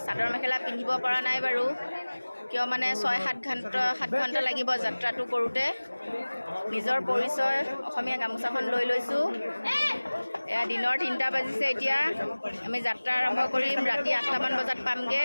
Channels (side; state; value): both; inverted; correlation -1.00